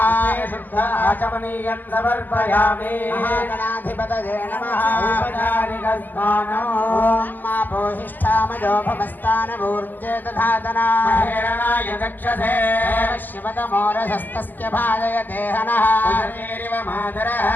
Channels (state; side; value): late; right; 0.086 ms